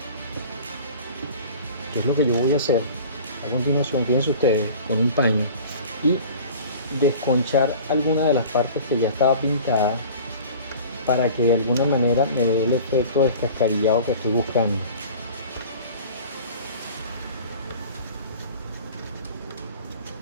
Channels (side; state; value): both; inverted; correlation -0.42